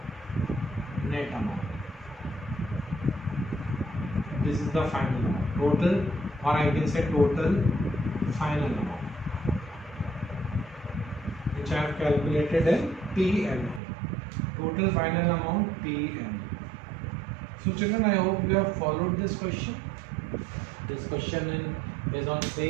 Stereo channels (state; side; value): drops out; left; at 13.8 s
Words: net amount. This is the final amount. Total, or I can say total final amount, which I have calculated in PNA. Total final amount PNA. So children, I hope you have followed this question. This question is on